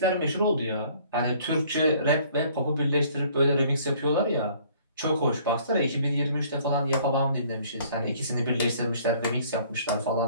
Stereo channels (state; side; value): inverted; both; correlation -0.57